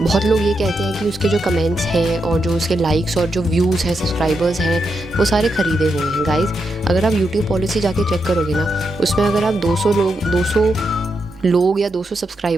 लोग ये कहते हैं कि उसके जो कमेंट्स हैं और जो उसके लाइक्स और जो व्यूज़ हैं, सब्सक्राइबर्स हैं, वो सारे ख़रीदे हुए हैं। गाइज़, अगर आप यूट्यूब पॉलिसी जाके चेक करोगे ना, उसमें अगर आप 200 लोग या 200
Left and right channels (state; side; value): normal; both; correlation 0.84